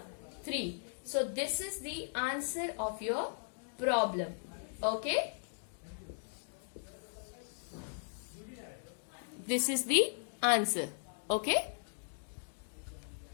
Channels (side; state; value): right; silent; digital silence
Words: 3. So this is the answer of your problem. Okay. This is the answer. Okay.